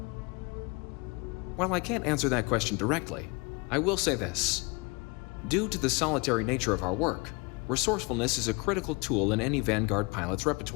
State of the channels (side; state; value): right; quieter; 28.1 dB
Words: While I can't answer that question directly, I will say this. Due to the solitary nature of our work, resourcefulness is a critical tool in any Vanguard pilot's